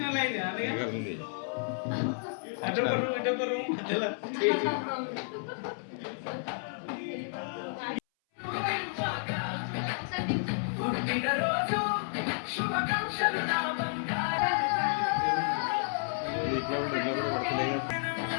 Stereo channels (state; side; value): silent; right; 57 dB below the other